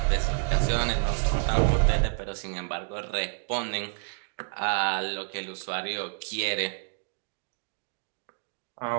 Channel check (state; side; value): silent; left; digital silence